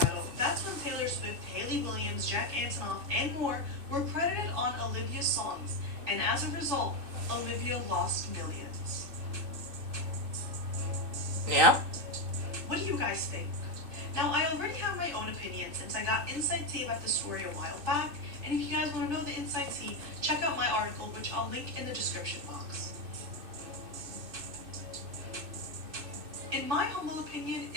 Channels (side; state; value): left; late; 2.6 ms